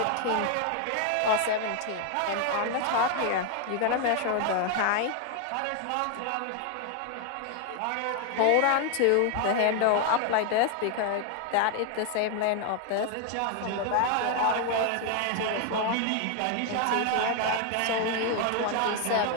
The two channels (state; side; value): different; both; correlation 0.00